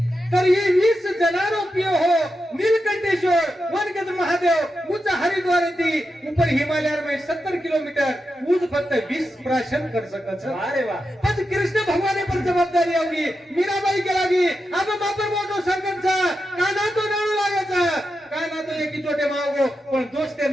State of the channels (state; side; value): normal; both; correlation 0.88